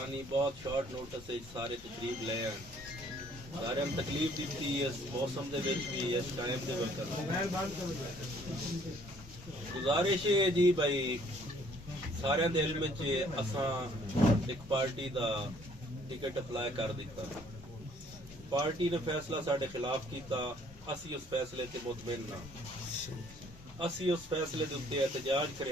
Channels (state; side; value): normal; both; correlation 0.61